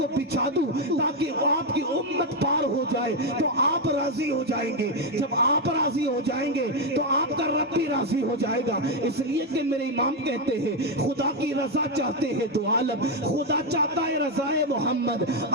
بچھا دوں تاکہ آپ کی امت پار ہو جائے، تو آپ راضی ہو جائیں گے، جب آپ راضی ہو جائیں گے تو آپ کا رب بھی راضی ہو جائے گا، اس لیے کہ میرے امام کہتے ہیں خدا کی رضا چاہتے ہیں دو عالم، خدا چاہتا ہے رضائے محمد،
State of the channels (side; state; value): both; normal; correlation 0.04